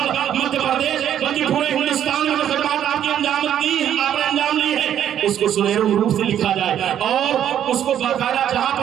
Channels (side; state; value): left; quieter; 10.2 dB